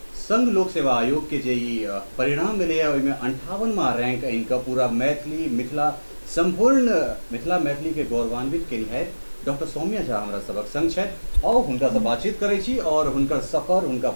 संघ लोक सेवा आयोग के जे परिणाम मिले ओहिमे 58वां रैंक आनि कऽ पूरा मैथिली मिथिला संपूर्ण मिथिला मैथिली के गौरवान्वित केनिहार डॉक्टर सौम्या झा हमरा सबक संग छथि और हुनका से बातचीत करै छी और हुनकर सफर, हुनका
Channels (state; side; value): inverted; both; correlation -1.00